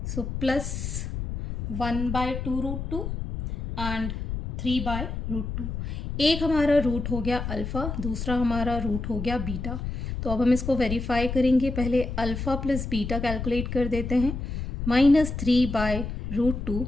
So plus 1/2√2 and 3/√2। एक हमारा रूट हो गया अल्फ़ा, दूसरा हमारा रूट हो गया बीटा। तो अब हम इसको वेरीफाई करेंगे। पहले अल्फ़ा प्लस बीटा कैलकुलेट कर देते हैं। -3/√2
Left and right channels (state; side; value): noise; left; rumble, 5 dB below the sound